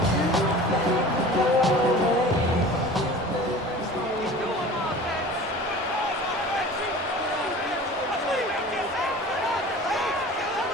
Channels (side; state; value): both; normal; correlation 0.40